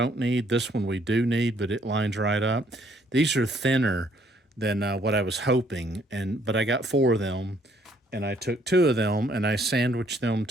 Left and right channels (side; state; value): both; normal; correlation 0.66